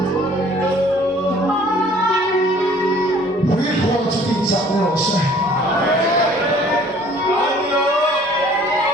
huwag ko ang sakinsak ni Jose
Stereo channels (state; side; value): normal; both; correlation 0.54